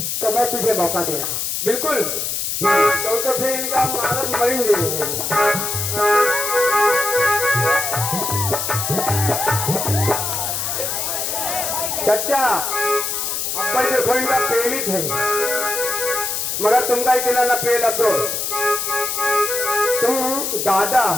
तो मैं तुझे मौका दे रहा। बिल्कुल, तो फिर इनका मालूम मरेंगे। चच्चा अब देखो इनका पेलित है, मगर तुमका इतना न पेल अफसोस, तुम दादा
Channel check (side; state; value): left; noise; hiss, 2 dB below the sound